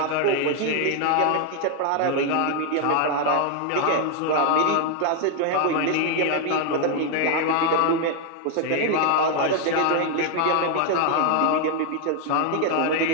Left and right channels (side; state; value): both; different; correlation 0.00